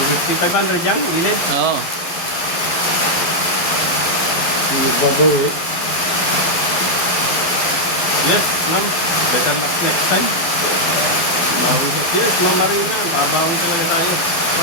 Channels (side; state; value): right; late; 11 ms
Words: 500 yan, ilin. Oo. Babaw eh. Yes, ma'am. Better luck next time. Yes, ma'am Marina. Babawi talaga tayo.